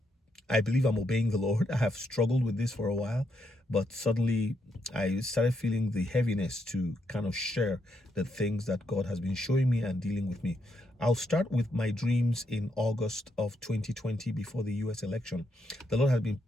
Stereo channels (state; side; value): normal; both; correlation 0.78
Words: believe I'm obeying the Lord. I have struggled with this for a while, but suddenly I started feeling the heaviness to kind of share the things that God has been showing me and dealing with me. I'll start with my dreams in August of 2020 before the US election. The Lord has been